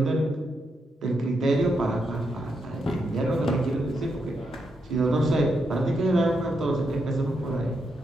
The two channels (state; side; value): normal; both; correlation 0.81